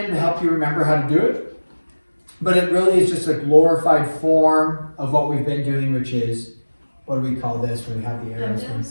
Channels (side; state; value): both; inverted; correlation -1.00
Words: to help you remember how to do it. But it really is just a glorified form of what we've been doing, which is, what do we call this when we have the